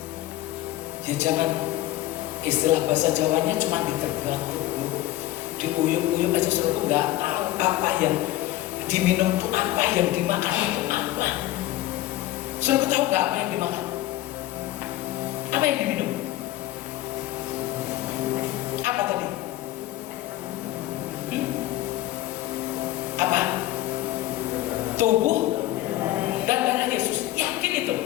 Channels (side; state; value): right; quieter; 15.2 dB